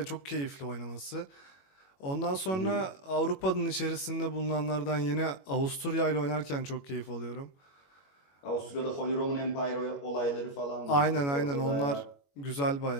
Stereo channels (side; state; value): right; late; 21 ms